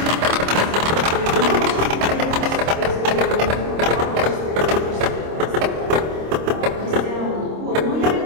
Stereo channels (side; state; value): left; late; 26 ms